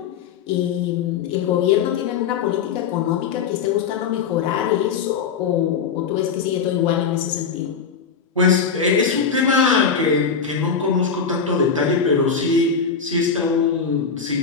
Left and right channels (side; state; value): right; quieter; 6.1 dB